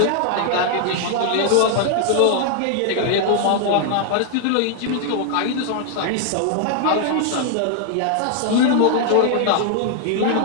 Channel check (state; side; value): different; both; correlation 0.00